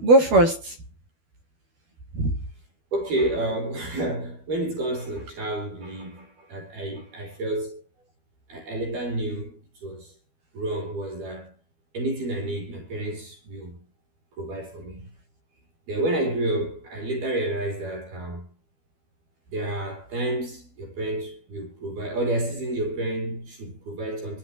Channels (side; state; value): left; late; 12 ms